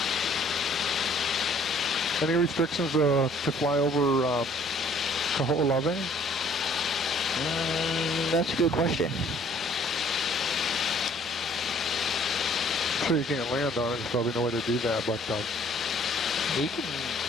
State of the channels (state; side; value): normal; both; correlation 0.58